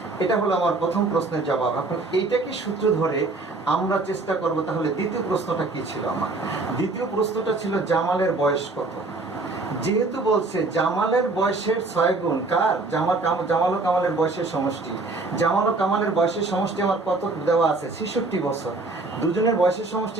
এটা হলো আমার প্রথম প্রশ্নের জবাব। এখন এইটাকে সূত্র ধরে আমরা চেষ্টা করব তাহলে দ্বিতীয় প্রশ্নটা কি ছিল আমার। দ্বিতীয় প্রশ্নটা ছিল জামালের বয়স কত। যেহেতু বলছে জামালের বয়সের 6 গুণ কার? জামাল ও কামালের বয়সের সমষ্টি। জামাল ও কামালের বয়সের সমষ্টি আমার কত দেওয়া আছে? 66 বছর। দুজনের বয়সের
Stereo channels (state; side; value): quieter; left; 3.3 dB